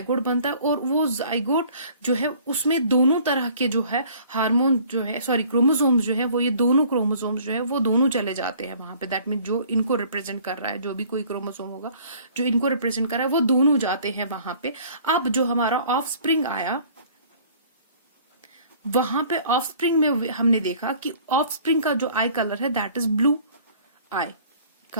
बनता है, और वो जाइगोट जो है उसमें दोनों तरह के जो है हार्मोन जो है क्रोमोसोम्स जो है वो, ये दोनों क्रोमोसोम्स जो है वो दोनों चले जाते हैं वहां पे. दैट मीन जो इनको रिप्रेजेंट कर रहा है, जो भी कोई क्रोमोसोम होगा जो इनको रिप्रेजेंट कर रहा है, वो दोनों जाते हैं वहां पे. अब जो हमारा ऑफ स्प्रिंग आया, वहां पे ऑफ स्प्रिंग में हमने देखा कि ऑफ स्प्रिंग का जो आई कलर है that is blue eye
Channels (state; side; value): inverted; both; correlation -0.53